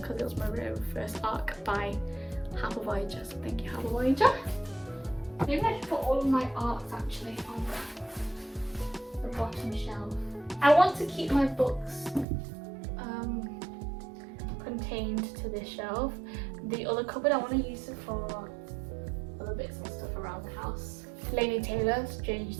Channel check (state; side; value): drops out; left; at 12.2 s